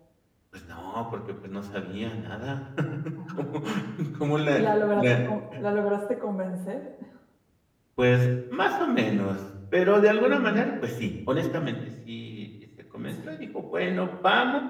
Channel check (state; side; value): identical; both; correlation 1.00